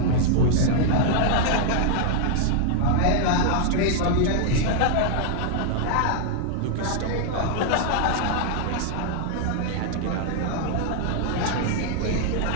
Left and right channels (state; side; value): different; both; correlation -0.01